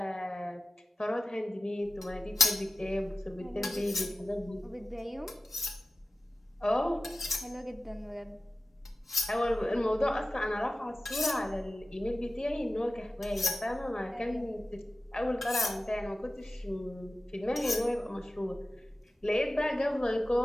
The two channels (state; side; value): normal; both; correlation 0.94